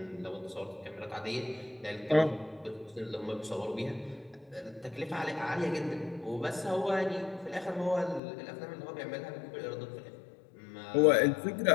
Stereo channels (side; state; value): right; drops out; at 8.2 s